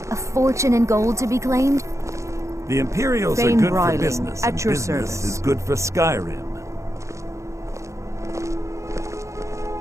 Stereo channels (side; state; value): left; late; 0.15 ms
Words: a fortune in gold to be claimed. The Imperials are Thane good Bryling, for business, at and your business service. is good for Skyrim.